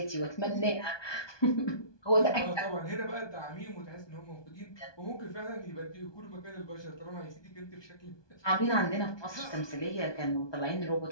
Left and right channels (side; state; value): right; late; 1.2 ms